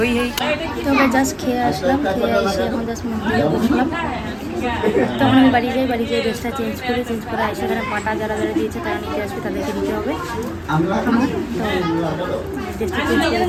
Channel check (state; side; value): identical; both; correlation 1.00